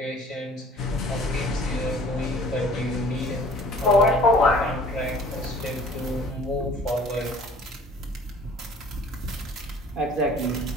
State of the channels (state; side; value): normal; both; correlation 0.50